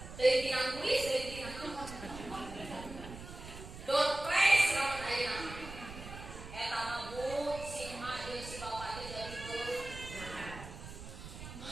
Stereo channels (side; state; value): right; noise; rumble, 12 dB below the sound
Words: Teuing tinang kuis, teuing tinang door prize lamun ayeuna. Eta mah bu si Mak jeung si Bapak teh jadi beuh.